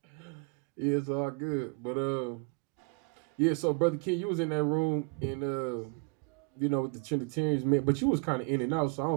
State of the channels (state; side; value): quieter; left; 33.0 dB